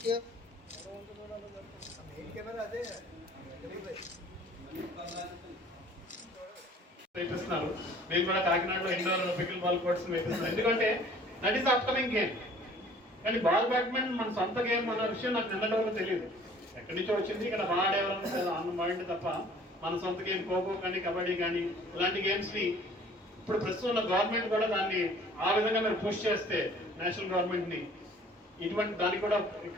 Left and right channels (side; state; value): both; normal; correlation 0.52